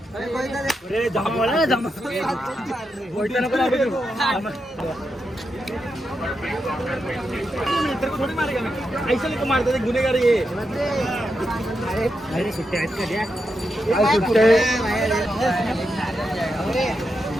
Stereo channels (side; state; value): both; normal; correlation 0.85